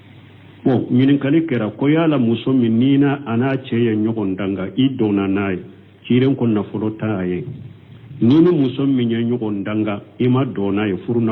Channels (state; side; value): identical; both; correlation 1.00